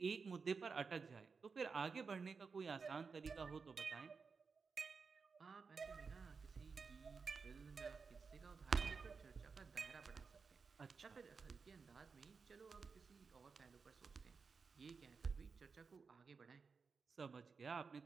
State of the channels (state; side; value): quieter; left; 5.1 dB